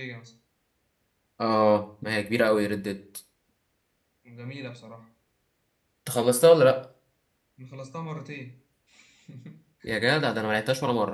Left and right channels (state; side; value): identical; both; correlation 1.00